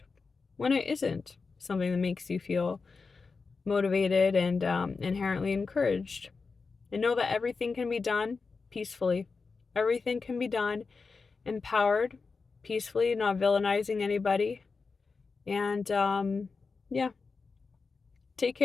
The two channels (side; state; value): right; quieter; 4.6 dB